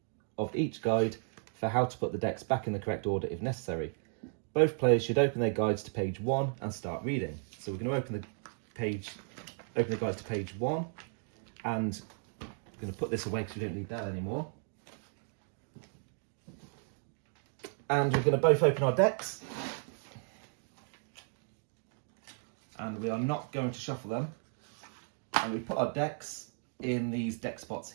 of each guide for how to put the decks back in the correct order if necessary. Both players should open their guides to page 1 and start reading. So we're going to open the guide to page 1, and I'm going to put this away because we don't need that anymore. And we're going to both open our decks. And we are not going to shuffle them. And we put our decks in these deck spots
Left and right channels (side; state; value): left; silent; 55 dB below the other